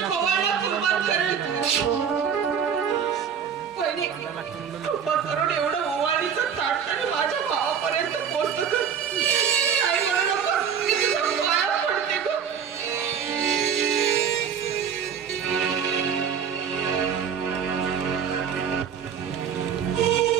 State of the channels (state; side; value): quieter; left; 7.6 dB